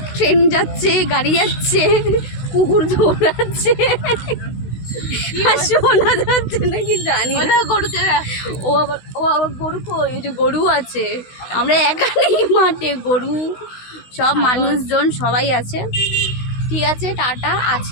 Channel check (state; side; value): late; right; 16 ms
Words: ট্রেন যাচ্ছে, গাড়ি যাচ্ছে, কুকুর দৌড়াচ্ছে, আর শোনা যাচ্ছে নাকি জানি না। ও আবার গরু, ওই যে গরু আছে, আমরা একা নেই মাঠে, গরু সব মানুষজন সবাই আছে। ঠিক আছে, টাটা,